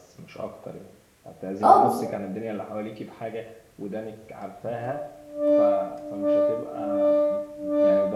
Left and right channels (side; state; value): both; identical; correlation 1.00